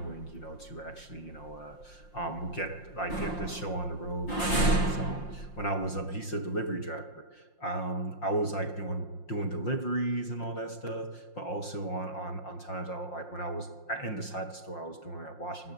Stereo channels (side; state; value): right; late; 5.7 ms